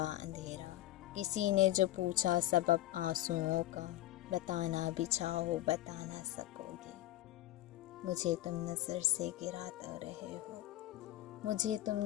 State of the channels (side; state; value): right; quieter; 15.1 dB